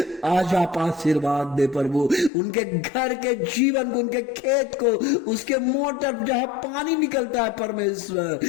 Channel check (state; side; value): drops out; right; at 2.3 s